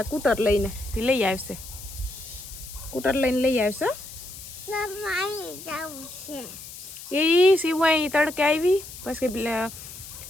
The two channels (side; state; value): left; noise; hiss, 13 dB below the sound